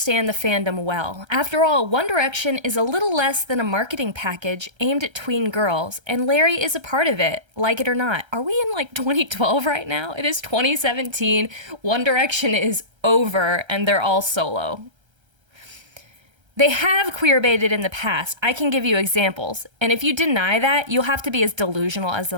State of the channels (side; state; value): left; late; 1.3 ms